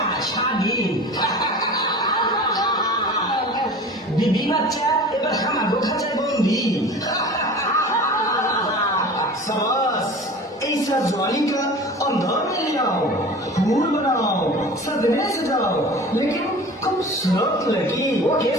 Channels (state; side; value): normal; both; correlation 0.38